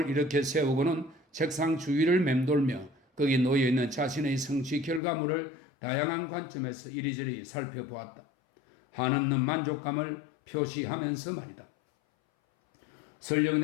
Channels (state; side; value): drops out; right; at 5.0 s